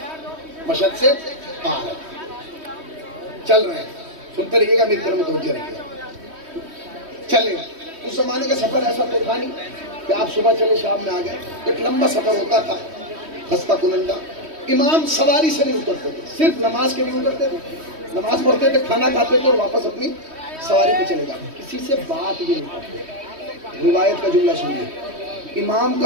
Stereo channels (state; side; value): late; left; 3.1 ms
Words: مشہد سے آ رہے ہیں, چل رہے ہیں. سنتے رہیے گا, میری طرف متوجہ رہیے گا. چلے. اس زمانے کا سفر ایسا تو تھا نہیں کہ آپ صبح چلے شام میں آ گئے. ایک لمبا سفر ہوتا تھا, خستہ کنندہ. امام سواری سے نہیں اترتے تھے, صرف نماز کے لیے اترتے تھے. نماز پڑھتے تھے, کھانا کھاتے تھے اور واپس اپنی سواری پہ چلے جاتے. کسی سے بات بھی نہیں کرتے. روایت کا جملہ سنیے, امام